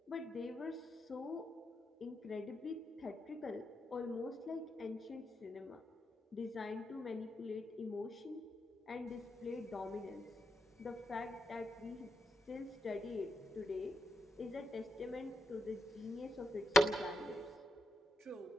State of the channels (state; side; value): normal; both; correlation 0.83